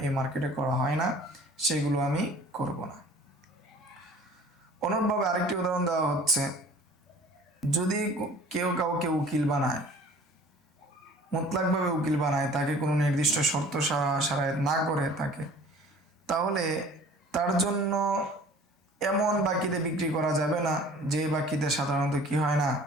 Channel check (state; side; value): normal; both; correlation 0.48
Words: এই মার্কেটে করা হয় না, সেগুলো আমি করব না। অনুরূপভাবে আরেকটি উদাহরণ দেওয়া হচ্ছে, যদি কেউ কাউকে উকিল বানায়, মুতলাকভাবে উকিল বানায়, তাকে কোনো নির্দিষ্ট শর্ত সারায়ত না করে তাকে, তাহলে তার জন্য এমন বাকিতে বিক্রি করা যাবে না যে বাকিতে সাধারণত কি হয় না,